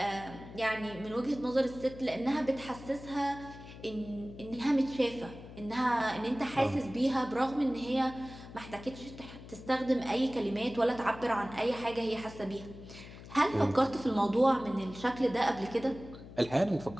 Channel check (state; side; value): noise; left; hum, 15 dB below the sound